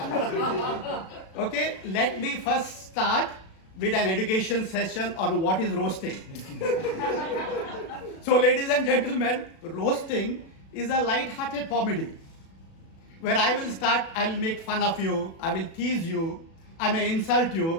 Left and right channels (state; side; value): late; right; 36 ms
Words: okay, let me first start with an education session on what is roasting. So, ladies and gentlemen, roasting is a light-hearted comedy where I will start, I will make fun of you, I will tease you, I may insult